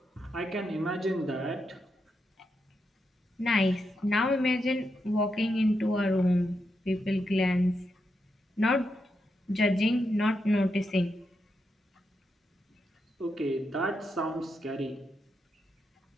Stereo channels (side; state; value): both; normal; correlation 0.84